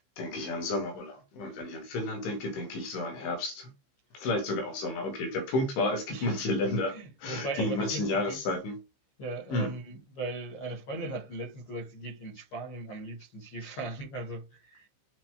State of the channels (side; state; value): right; late; 15 ms